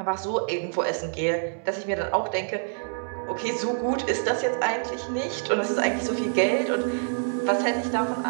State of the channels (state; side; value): silent; left; 61 dB below the other